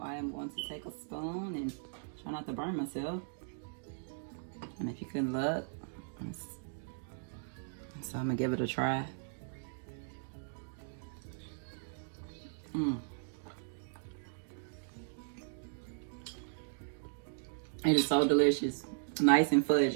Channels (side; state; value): left; silent; digital silence